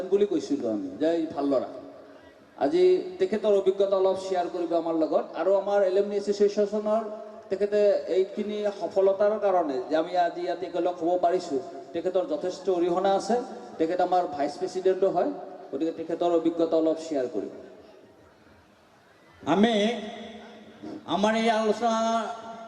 বুলি কৈছিলোঁ আমি, যে ভাল ল'ৰা। আজি তেখেতৰ অভিজ্ঞতা অলপ শ্বেয়াৰ কৰিব আমাৰ লগত, আৰু আমাৰ এলুমনি এছ'চিয়েশ্যনৰ তেখেতে এইখিনি সফলতাৰ কাৰণে যে আমি আজি ইয়াত একেলগ হ'ব পাৰিছোঁ, তেখেতৰ যথেষ্ট অৰিহণা আছে। তেখেত আমাৰ ভাইচ প্ৰেছিডেণ্টো হয়, গতিকে তেখেতৰ অভিজ্ঞতা অলপ শ্বেয়াৰ কৰিব। আমি আমাৰ এই আলোচনা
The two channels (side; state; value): both; identical; correlation 1.00